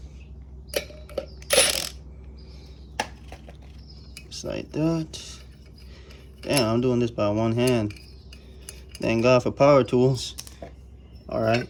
Just like that. Damn, I'm doing this by one hand. Thank God for power tools. All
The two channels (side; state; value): both; identical; correlation 1.00